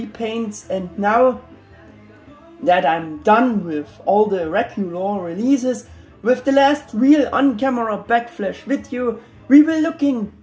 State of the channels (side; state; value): both; identical; correlation 1.00